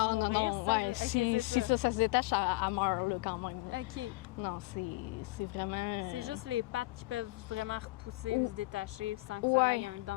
Non, mourir, ça? ouais, OK, si c'est ça se détache, elle meurt là, quand même. OK. Non, c'est vraiment... C'est juste les pattes qui peuvent vraiment repousser ou se détacher sans que ça Ouais. ait un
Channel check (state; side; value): quieter; right; 21.7 dB